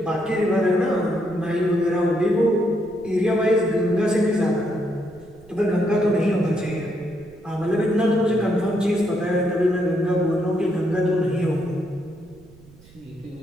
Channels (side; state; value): right; noise; rumble, 25 dB below the sound